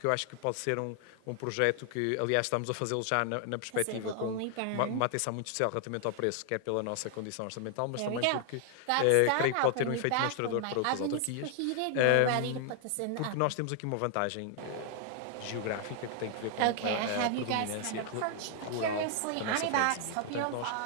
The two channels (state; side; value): different; both; correlation 0.00